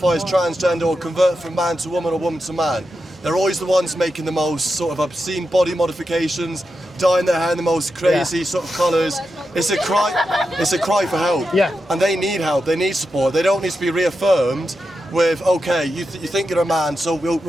as transgender or convert from man to woman or woman to man. They're always the ones making the most sort of obscene body modifications, dyeing their hair in the most crazy sort of colours. It's a cry for help. Yeah. And they need help, they need support. They don't need to be reaffirmed with, okay, you think you're a man, so we'll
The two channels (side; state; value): both; normal; correlation 0.88